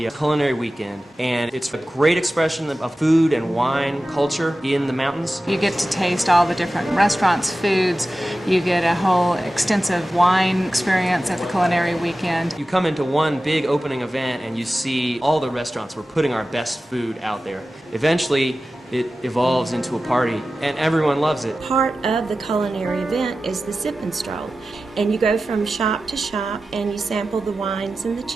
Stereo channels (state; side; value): normal; both; correlation 0.94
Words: Culinary Weekend, and it's a great expression of food and wine culture in the mountains. You get to taste all the different restaurants' foods. You get a whole extensive wine experience at the Culinary Weekend. You come into one big opening event and you see all the restaurants. We're putting our best food out there. Eventually, it evolves into a party, and everyone loves it. Part of the culinary event is the sip and stroll, and you go from shop to shop and you sample the wines and the